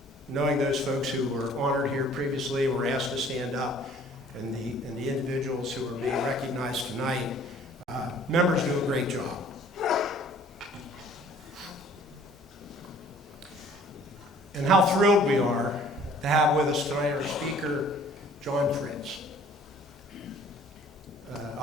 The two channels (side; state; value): both; normal; correlation 0.54